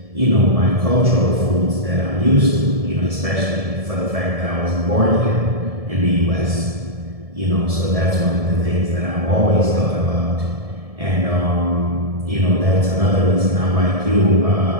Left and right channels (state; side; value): late; left; 1.7 ms